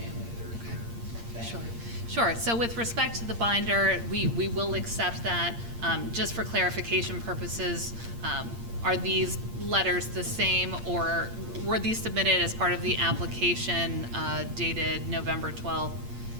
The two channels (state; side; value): late; left; 8.7 ms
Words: that are here. Thank you. Sure. So with respect to the binder, we will accept that. Just for clarification purposes, are these letters the same, or were these submitted as part of the application dated November 12th,